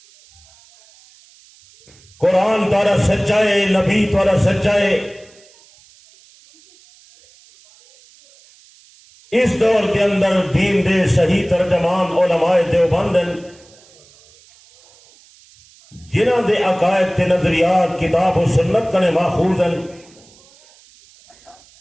قرآن تھوڑا سچا ہے، نبی تھوڑا سچا ہے۔ اس دور کے اندر دین دے صحیح ترجمان علماء دیوبند ہیں، جنہاں دے عقائد تے نظریات کتاب و سنت کنے ماخوذ ہیں۔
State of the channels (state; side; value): noise; right; hiss, 28 dB below the sound